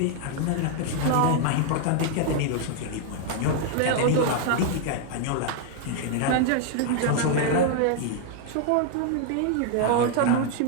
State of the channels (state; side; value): different; both; correlation 0.00